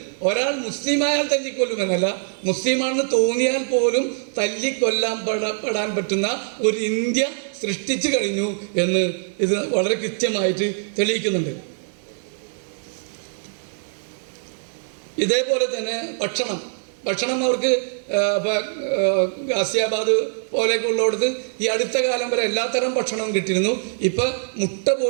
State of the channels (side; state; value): left; silent; digital silence